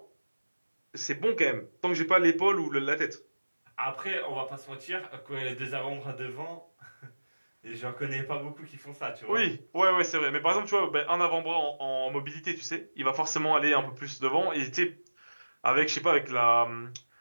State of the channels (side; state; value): both; inverted; correlation -1.00